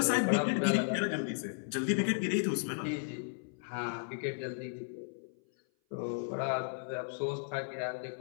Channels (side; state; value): right; silent; 55 dB below the other